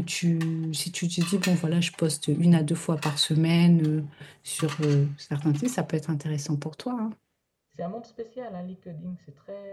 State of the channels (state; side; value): identical; both; correlation 1.00